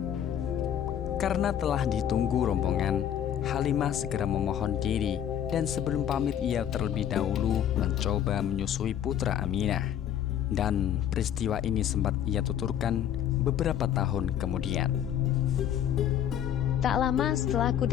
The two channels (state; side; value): quieter; right; 10.0 dB